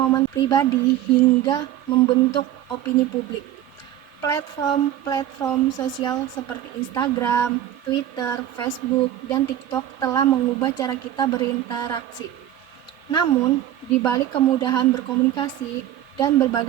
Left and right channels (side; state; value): left; quieter; 12.2 dB